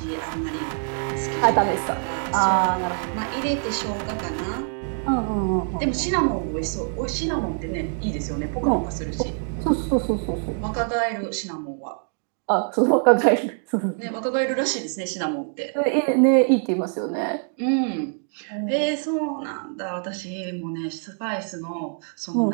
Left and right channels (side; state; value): left; silent; 62 dB below the other